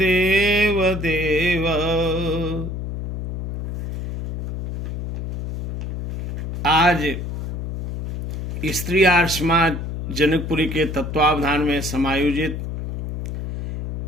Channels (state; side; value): noise; left; hum, 6 dB below the sound